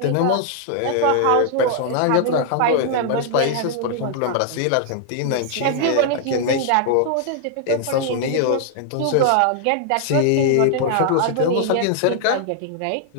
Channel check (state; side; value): different; both; correlation 0.00